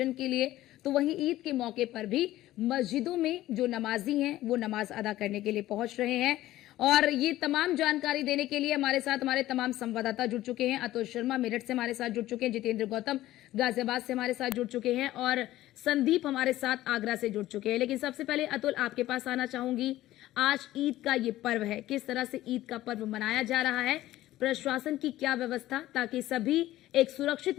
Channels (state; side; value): quieter; right; 15.2 dB